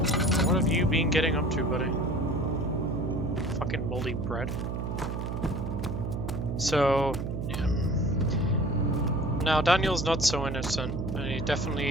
What have you been getting up to, buddy? Fucking moldy bread. So... now, Daniel's not so innocent, and he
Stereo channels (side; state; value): right; noise; hum, 3 dB below the sound